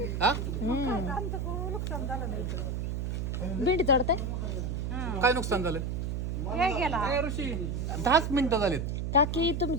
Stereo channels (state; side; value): noise; right; hum, 2 dB below the sound